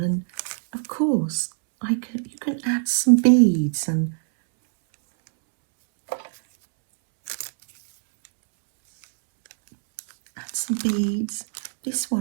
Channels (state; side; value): silent; left; 64 dB below the other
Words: and of course you can add some beads and This